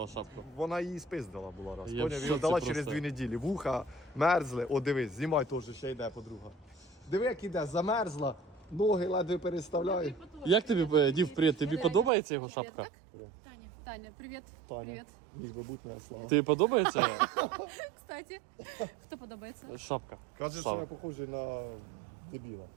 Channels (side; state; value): left; drops out; at 12.1 s